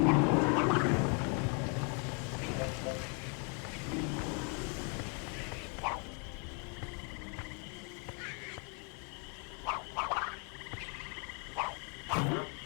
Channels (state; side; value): quieter; right; 37.9 dB